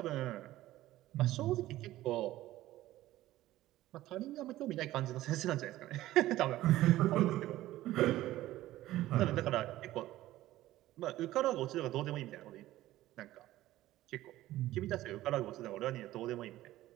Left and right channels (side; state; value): left; quieter; 15.4 dB